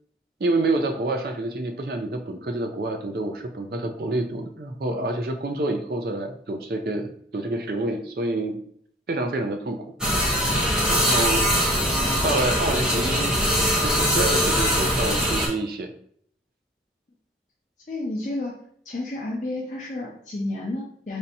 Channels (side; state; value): both; normal; correlation 0.44